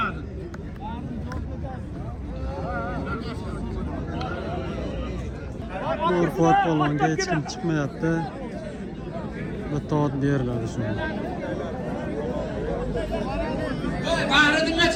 Norqot polvonga hech kim chiqmayapti. Bitta ot beriladi shunga. Bahridinga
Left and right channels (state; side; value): identical; both; correlation 1.00